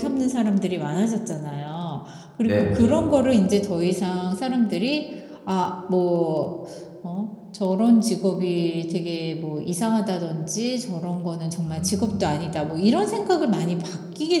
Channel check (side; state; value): both; identical; correlation 1.00